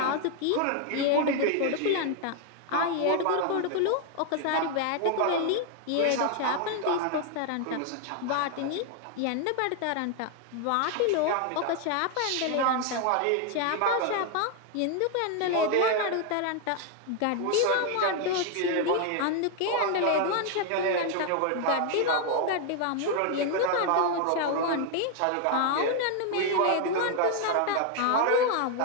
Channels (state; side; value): different; both; correlation 0.00